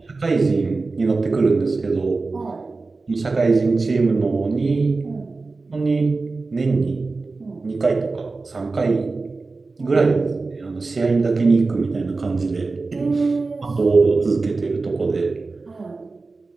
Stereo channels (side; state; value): left; quieter; 3.8 dB